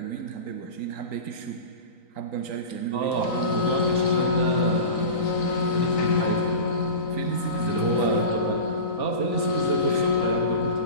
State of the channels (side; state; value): right; late; 3.9 ms